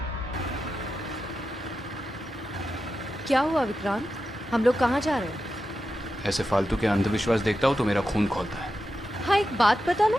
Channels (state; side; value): normal; both; correlation 0.90